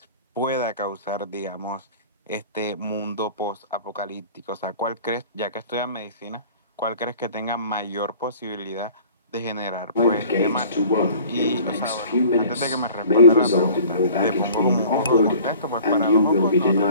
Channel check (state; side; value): inverted; both; correlation -0.47